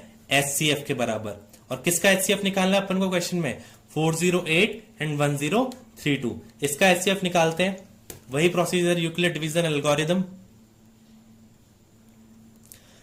HCF के बराबर। और किसका HCF निकालना है अपन को क्वेश्चन में, 408 एंड 1032। इसका HCF निकालते हैं, वही प्रोसीजर, यूक्लिड डिवीजन एल्गोरिथम।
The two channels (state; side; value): identical; both; correlation 1.00